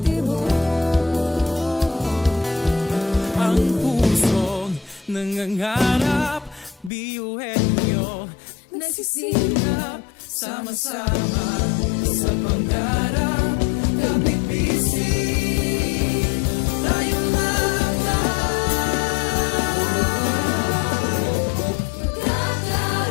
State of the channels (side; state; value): right; drops out; at 6.9 s